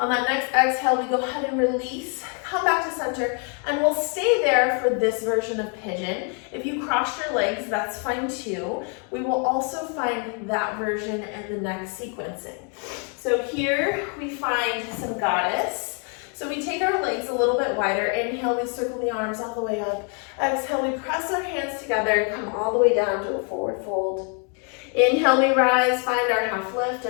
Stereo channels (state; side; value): quieter; right; 39.2 dB